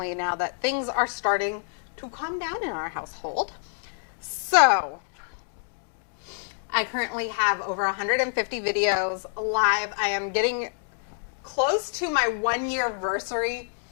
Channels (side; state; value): right; silent; digital silence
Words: now that things are starting to calm down in our household. So, I currently have over 150 videos live. I am getting close to my 1-year anniversary